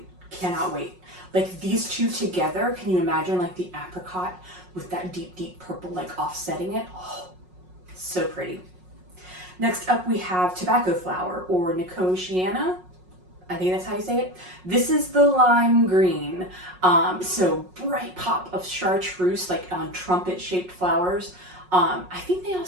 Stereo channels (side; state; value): left; late; 5.5 ms